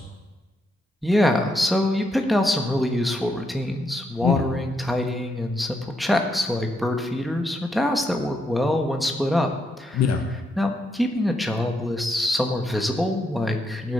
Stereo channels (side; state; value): both; normal; correlation 0.79